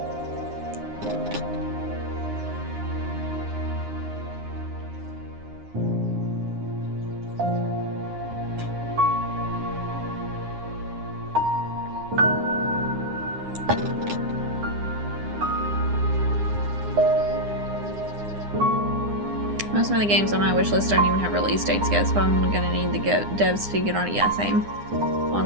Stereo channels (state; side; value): late; left; 9.8 ms